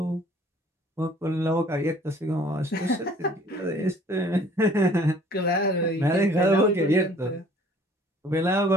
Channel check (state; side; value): normal; both; correlation 0.54